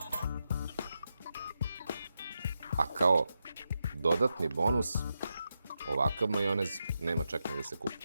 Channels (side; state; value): both; inverted; correlation -0.87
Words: A kao dodatni bonus, ovakav majonez nema čak ni da se kupi.